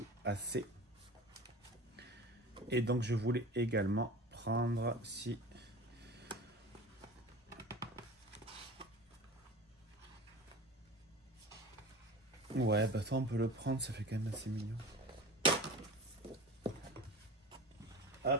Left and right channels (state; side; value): normal; both; correlation 0.35